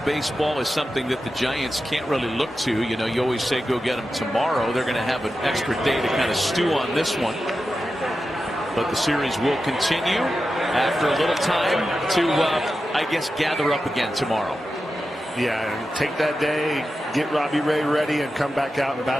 baseball is something that the Giants can't really look to. You know, you always say go get them tomorrow. They're going to have an extra day to kind of stew on this one. But the series will continue after a little time to, I guess, gather up again tomorrow. Yeah, and take that day, get Robbie Ray ready, and come back out and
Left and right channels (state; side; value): normal; both; correlation 0.91